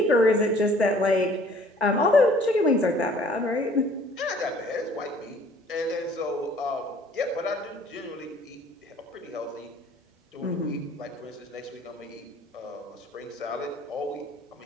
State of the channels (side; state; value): both; normal; correlation 0.55